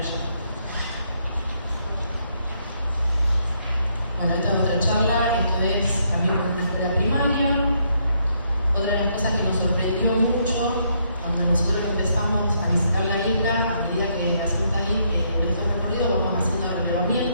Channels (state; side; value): inverted; both; correlation -0.73